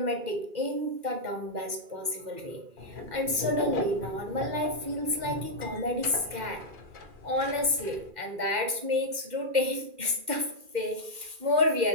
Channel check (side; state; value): left; late; 2.1 ms